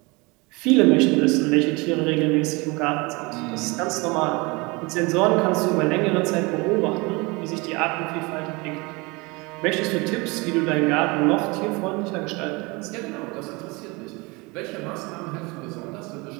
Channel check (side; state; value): left; quieter; 26.1 dB